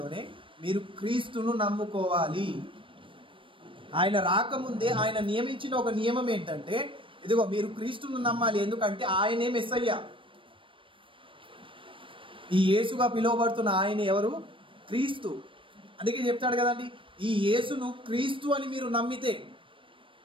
మీరు క్రీస్తును నమ్ముకోవాలి. ఆయన రాకముందే ఆయన నియమించిన ఒక నియమం ఏంటంటే, ఇదిగో మీరు క్రీస్తును నమ్మాలి. ఎందుకంటే ఆయనే మెస్సయ్య. ఈ యేసుగా పిలువబడుతున్న ఆయన ఎవరు? క్రీస్తు. అందుకే చెప్తాడు కదండి, ఈ యేసును క్రీస్తు అని మీరు నమ్మితే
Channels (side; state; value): left; late; 0.25 ms